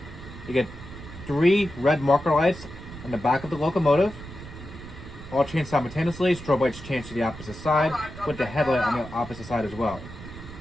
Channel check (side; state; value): right; noise; rumble, 14 dB below the sound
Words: You get 3 red marker lights on the back of the locomotive. All change simultaneously. Strobe lights change to the opposite side with the headlight on the opposite side as well.